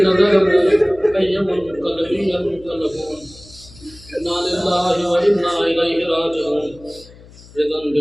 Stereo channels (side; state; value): left; noise; hum, 22 dB below the sound